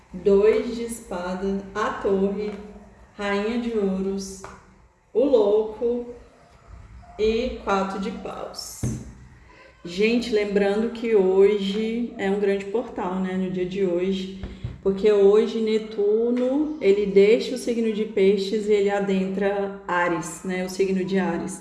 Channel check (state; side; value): identical; both; correlation 1.00